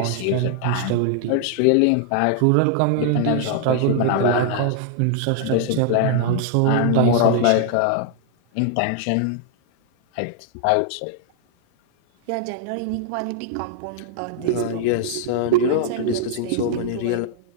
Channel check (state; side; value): different; both; correlation 0.00